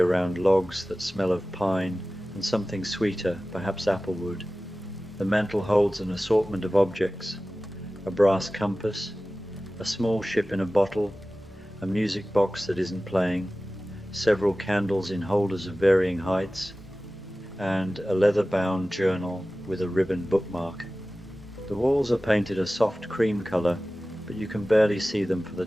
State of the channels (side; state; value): both; normal; correlation 0.96